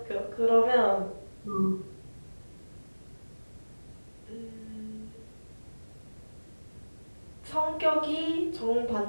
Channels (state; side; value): inverted; both; correlation -1.00